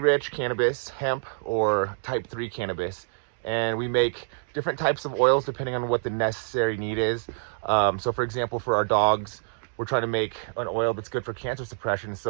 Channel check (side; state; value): left; silent; 60 dB below the other